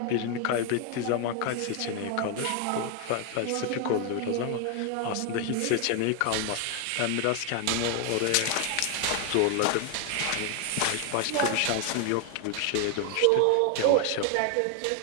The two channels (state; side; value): different; both; correlation 0.00